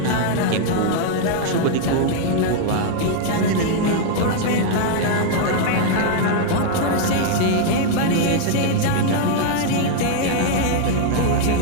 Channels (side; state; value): both; different; correlation 0.00